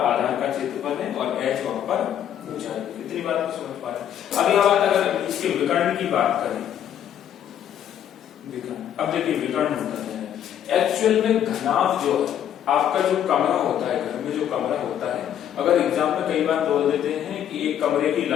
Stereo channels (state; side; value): quieter; right; 10.1 dB